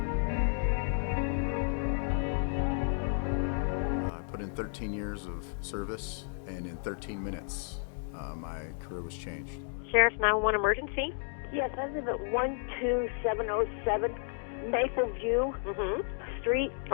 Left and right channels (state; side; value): silent; right; 56 dB below the other